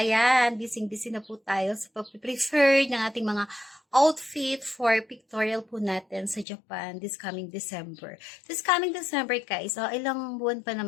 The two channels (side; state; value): right; drops out; at 6.5 s